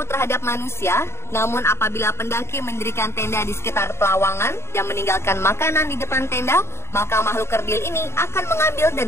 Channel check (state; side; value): late; right; 0.13 ms